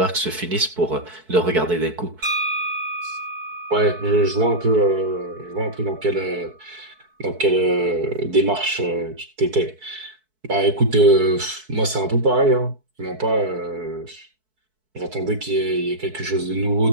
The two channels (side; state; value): left; late; 4.6 ms